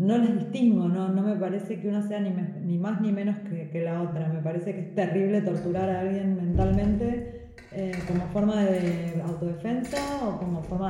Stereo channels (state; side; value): identical; both; correlation 1.00